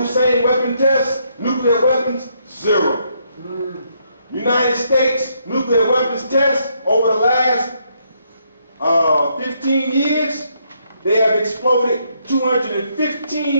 weapon tests, nuclear weapons, 0. United States nuclear weapons tests over the last 15 years, they have exploded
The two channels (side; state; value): both; inverted; correlation -0.74